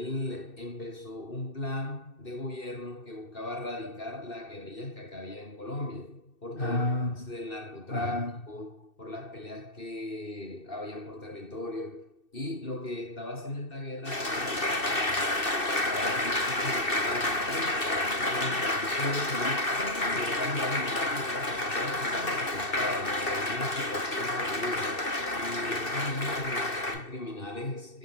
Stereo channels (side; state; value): right; late; 2.6 ms